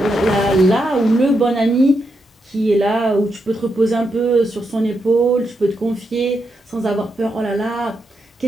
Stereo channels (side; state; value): both; normal; correlation 0.83